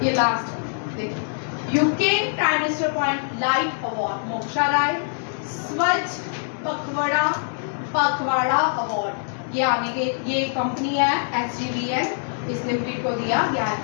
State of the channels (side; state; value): right; silent; digital silence